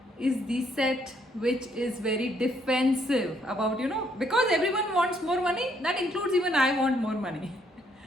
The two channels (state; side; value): normal; both; correlation 0.69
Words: is the set which is very defensive about, because everyone wants more money, that includes even I want more money.